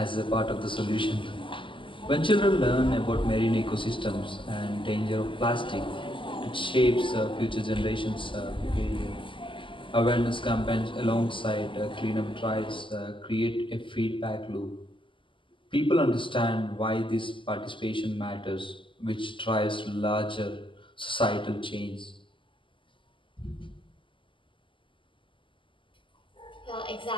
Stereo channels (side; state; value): right; late; 0.25 ms